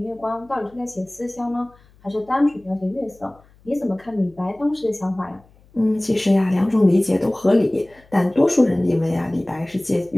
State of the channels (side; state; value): left; noise; hum, 29 dB below the sound